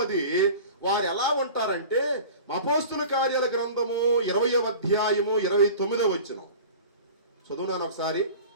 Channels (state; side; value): inverted; both; correlation -0.39